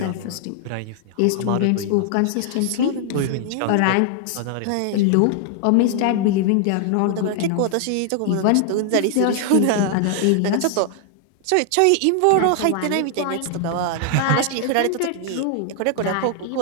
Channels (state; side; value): different; both; correlation 0.00